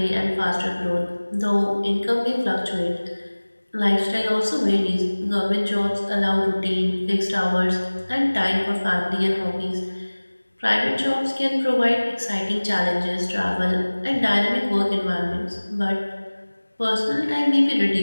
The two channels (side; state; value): both; inverted; correlation -1.00